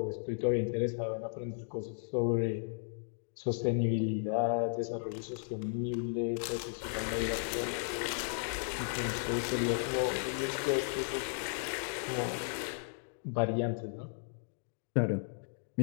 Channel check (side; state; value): right; silent; digital silence